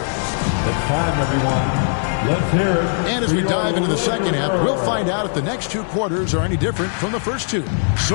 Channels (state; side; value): silent; right; digital silence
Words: time, everyone. Let's hear it. And as we dive into the second half, we'll find out if the next two quarters are any different from the first two.